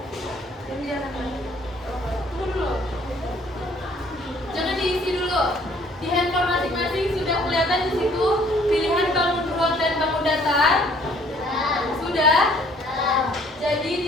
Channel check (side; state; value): both; normal; correlation 0.59